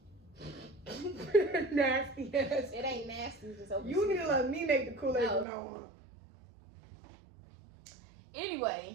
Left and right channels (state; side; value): drops out; left; at 5.5 s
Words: Nasty ass. It ain't nasty. It's just open. You need to let me make the Kool-Aid No. from now on.